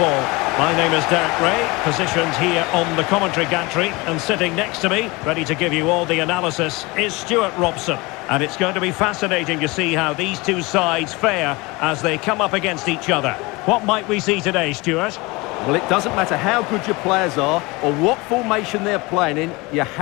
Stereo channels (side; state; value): right; quieter; 24.2 dB